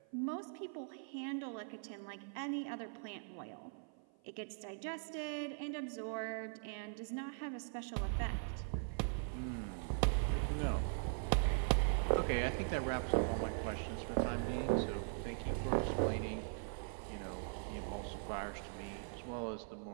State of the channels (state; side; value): silent; left; 50 dB below the other